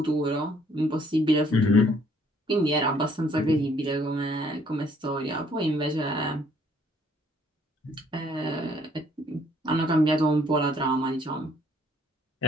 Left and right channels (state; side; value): normal; both; correlation 0.63